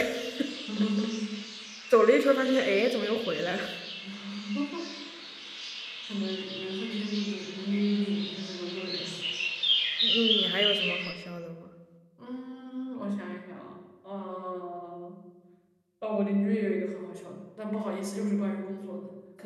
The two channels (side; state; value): both; identical; correlation 1.00